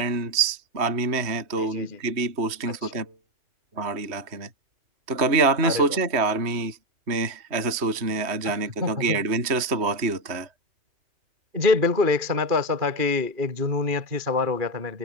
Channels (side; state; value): left; late; 3.1 ms